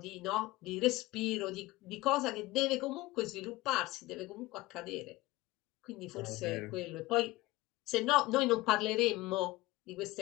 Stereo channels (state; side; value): quieter; right; 19.4 dB